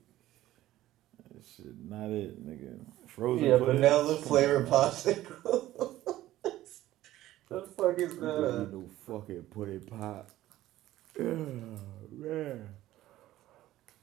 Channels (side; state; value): left; quieter; 14.9 dB